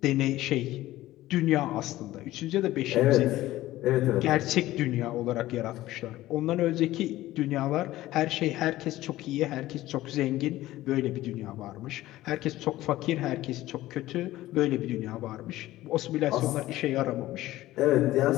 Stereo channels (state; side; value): quieter; right; 16.0 dB